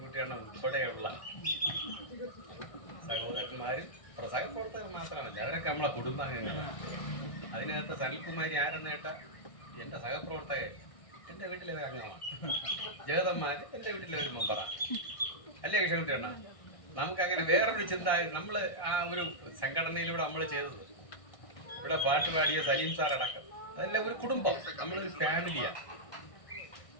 ഉൾപ്പെടെയുള്ള സഹോദരന്മാരും സഹപ്രവർത്തകർ മാത്രമല്ല, അവരൊക്കെ നമ്മളെ കുടുംബാംഗങ്ങളാണ്. അതിനകത്ത് സനിൽകുമാരി ആരെന്ന് കേട്ടാൽ എൻ്റെ സഹപ്രവർത്തകർ എൻ്റെ വീട്ടിലെ ഒരു അംഗമാണ്. ജഗതന്മാർ എൻ്റെ വീട്ടിലെ ഒരു മെമ്പറാണ്. അല്ലേ കിഴൻകുട്ടിയാണ്? നമുക്കങ്ങനെ വേറൊരു ചിന്ത, നമ്മൾ ആ ഒരു സംഘടനയിലൂടെ നമ്മൾ ചെയ്തത്, ഇവിടെ പാട്ട് പാടിയ സലീം സാർ അടക്കം, അതെല്ലാം ഒരു കുടുംബം, നമ്മളൊരു ഫാമിലിയാണ്.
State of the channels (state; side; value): late; right; 1.6 ms